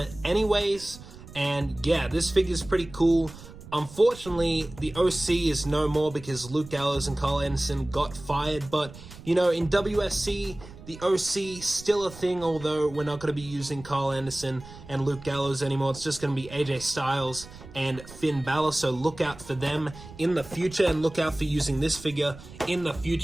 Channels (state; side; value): noise; right; rumble, 17 dB below the sound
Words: anyways. And yeah, this figure is pretty cool. Unfortunately, the OC is no more because Luke Gallows and Carl Anderson got fired. But, you know, in WSC, the OC still a thing, although we're not going to be using Carl Anderson and Luke Gallows anymore. It's just going to be AJ Styles and Finn Balor. So look out for them in the future, and look out for using this figure in the